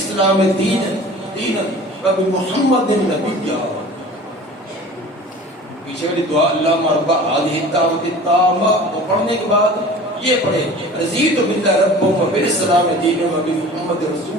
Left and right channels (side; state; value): both; normal; correlation 0.42